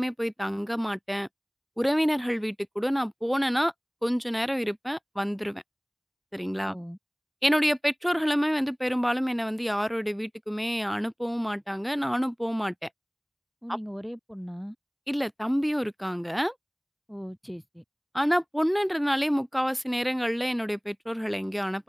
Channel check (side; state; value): both; identical; correlation 1.00